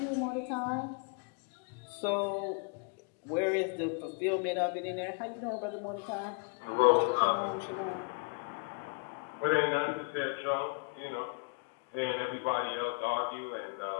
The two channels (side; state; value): right; quieter; 34.5 dB